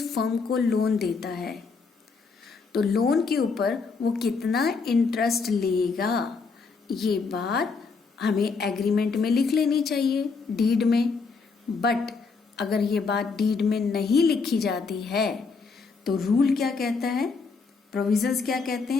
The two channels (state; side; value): quieter; right; 4.7 dB